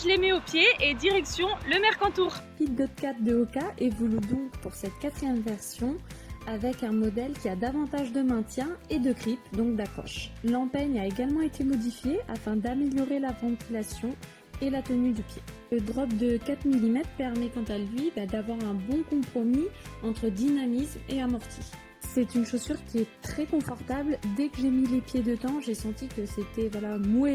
je les mets aux pieds et direction le Mercantour. Speedgoat 4 de Hoka évolue donc pour cette 4e version avec un modèle qui a davantage de maintien et de grip, donc d'accroche. L'empeigne a également été modifiée afin d'améliorer la ventilation et la tenue du pied. Le drop de 4 mm permet quant à lui d'avoir un bon compromis entre dynamisme et amorti. C'est une chaussure qui est très confortable. Dès que j'ai mis les pieds dedans, j'ai senti que c'était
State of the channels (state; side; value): identical; both; correlation 1.00